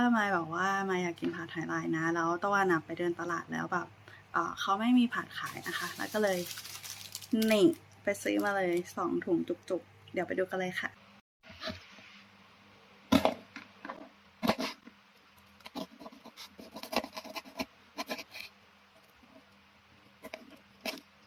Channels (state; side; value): identical; both; correlation 1.00